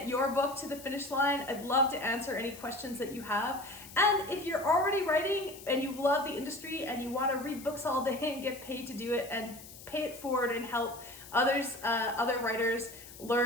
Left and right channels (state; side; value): noise; left; hiss, 17 dB below the sound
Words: your book to the finish line, I'd love to answer any questions that you have. And if you're already writing and you love the industry and you want to read books all day and get paid to do it and pay it forward and help other writers